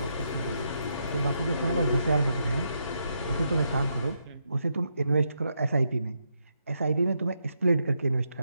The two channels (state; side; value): inverted; both; correlation -0.80